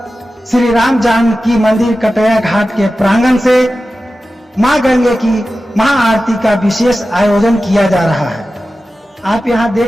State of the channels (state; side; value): normal; both; correlation 0.94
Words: श्री राम जानकी मंदिर कटैया घाट के प्रांगण से मां गंगे की महाआरती का विशेष आयोजन किया जा रहा है। आप यहां